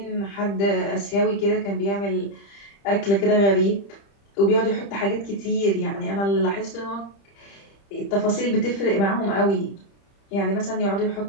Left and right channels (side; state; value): right; late; 30 ms